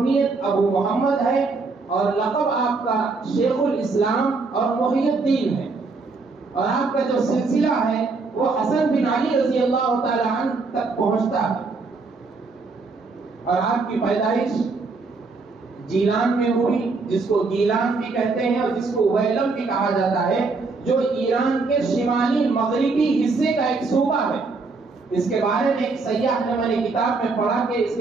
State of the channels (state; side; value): quieter; left; 4.1 dB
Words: ابو محمد ہے، اور لقب آپ کا شیخ الاسلام اور محی الدین ہے، اور آپ کا جو سلسلہ ہے وہ حسن بن علی رضی اللہ تعالی عنہ تک پہنچتا ہے، اور آپ کی پیدائش جیلان میں ہوئی، جس کو گیلان بھی کہتے ہیں اور جس کو ویلم بھی کہا جاتا ہے، جو ایران کے شمالی مغربی حصے کا ایک صوبہ ہے۔ اس کے بارے میں ایک سیاح نے، میں نے کتاب میں پڑھا کہ اس